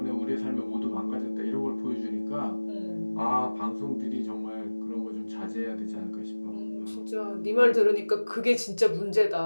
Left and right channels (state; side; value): inverted; both; correlation -1.00